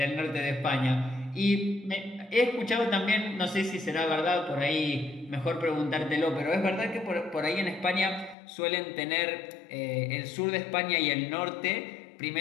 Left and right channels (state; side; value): drops out; right; at 8.3 s